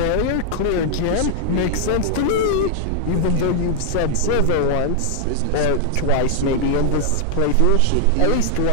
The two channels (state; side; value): different; both; correlation -0.01